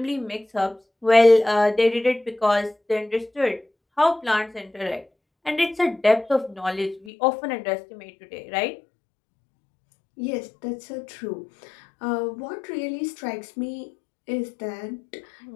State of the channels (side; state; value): right; drops out; at 7.1 s